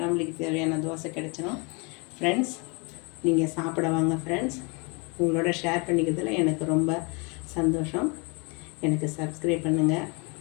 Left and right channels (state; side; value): quieter; right; 31.3 dB